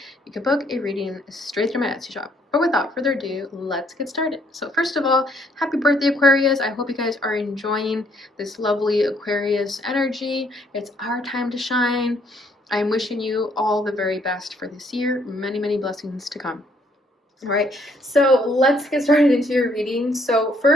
You can book a reading straight through my Etsy shop. But without further ado, let's get started. So first of all, happy birthday, Aquarius. I hope you guys are enjoying this lovely Aquarius energy. It's our time to shine. I'm wishing you all the very best for this year. Many, many blessings to come. All right, so let's get started into your reading. So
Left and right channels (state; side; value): normal; both; correlation 0.67